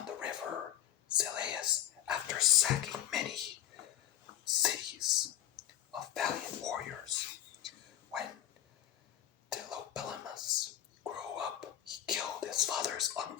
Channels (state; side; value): quieter; right; 11.9 dB